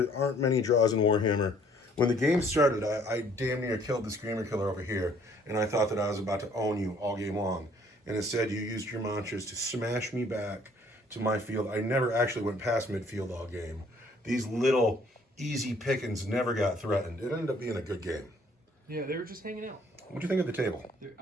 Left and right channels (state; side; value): normal; both; correlation 0.61